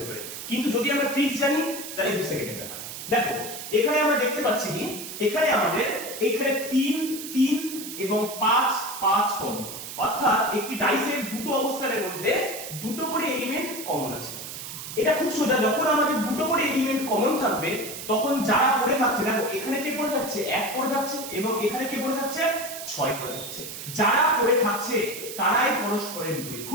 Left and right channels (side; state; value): right; noise; hiss, 9 dB below the sound